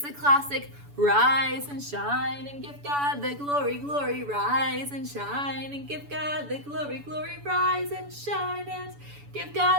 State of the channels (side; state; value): left; late; 7.0 ms